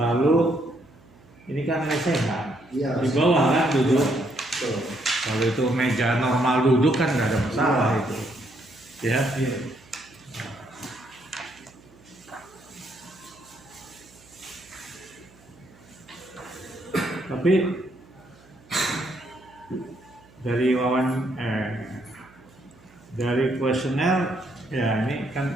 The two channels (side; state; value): right; noise; hum, 26 dB below the sound